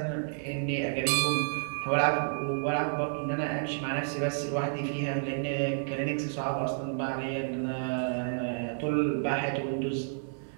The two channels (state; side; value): silent; left; digital silence